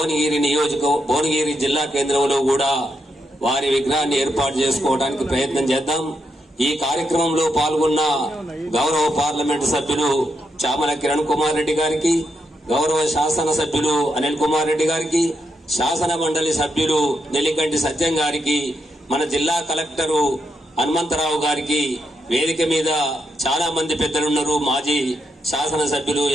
జిల్లా కేంద్రంలో కూడా వారి విగ్రహాన్ని ఏర్పాటు చేసుకోవడానికి ప్రయత్నం చేద్దాం. ఈ కార్యక్రమంలో పాల్గొన్న గౌరవ పార్లమెంటు సభ్యులు చామల కిరణ్ కుమార్ రెడ్డి గారికి, గౌరవ శాసన సభ్యులు అనిల్ కుమార్ రెడ్డి గారికి, శాసన మండలి సభ్యులు నెల్లికంటి సత్యం గారికి, మన జిల్లా కలెక్టరు హనుమంతరావు గారికి, వేదిక మీద చాలా మంది పెద్దలున్నారు, మాజీ శాసన సభ్యులు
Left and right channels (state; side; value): normal; both; correlation 0.82